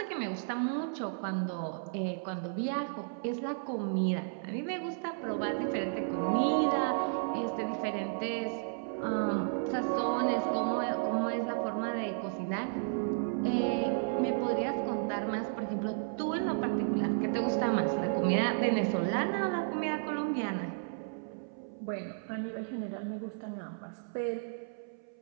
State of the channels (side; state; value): left; silent; 56 dB below the other